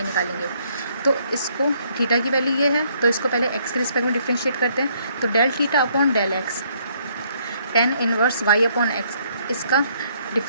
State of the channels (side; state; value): both; inverted; correlation -0.67